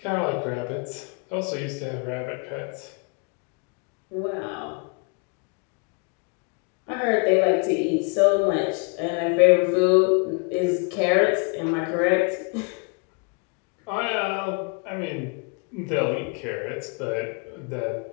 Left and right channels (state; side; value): quieter; right; 34.0 dB